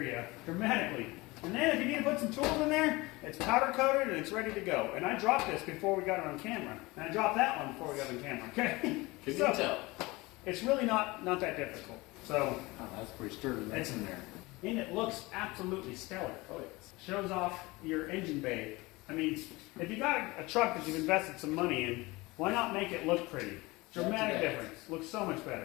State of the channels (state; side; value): quieter; right; 22.4 dB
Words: dramatically. And then if you need to put some tools in there, it's powder coated and it's ready to go. And I dropped this before we got it on camera. And I dropped that one before we got it on camera, okay? Can you So, tell? it's really not that difficult. So, Oh, that's pretty sturdy. That's in there. and it looks absolutely stellar. Oh, yes. Shows off your engine bay. I mean, if you got a truck that you've invested some money in, why not make it look pretty? Dramatic difference. Looks so much